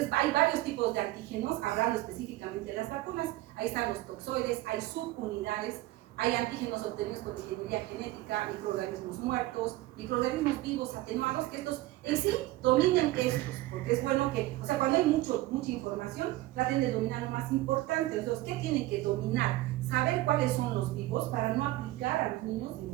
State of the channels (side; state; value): left; quieter; 17.4 dB